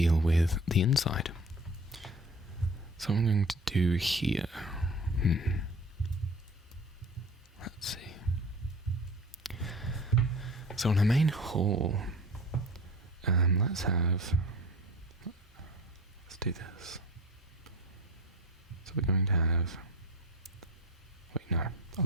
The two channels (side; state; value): both; normal; correlation 0.39